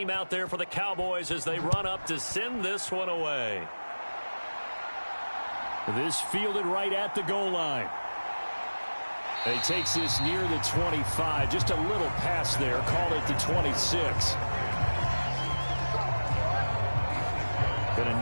out there for the Cowboys as they run up to send this one away. This fielded right at the goal line. He takes this near the 25. Just a little pass there. Called it the 26. Been a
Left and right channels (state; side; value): inverted; both; correlation -1.00